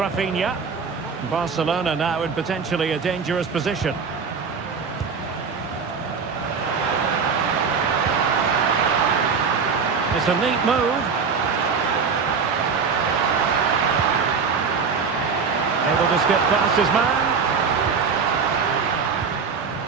Barcelona now in potentially a dangerous position. It's a neat move. Able to skip past his man.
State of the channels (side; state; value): left; quieter; 5.6 dB